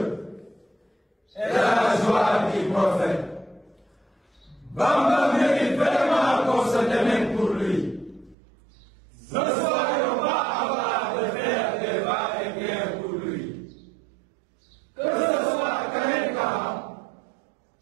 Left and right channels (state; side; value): drops out; left; at 8.3 s